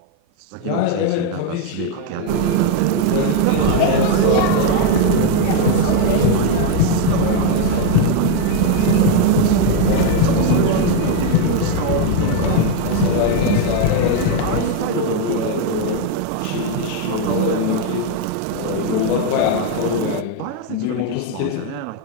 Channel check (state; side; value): different; both; correlation 0.01